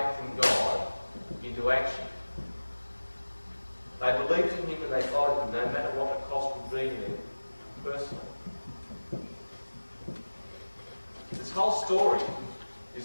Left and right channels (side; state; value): both; inverted; correlation -1.00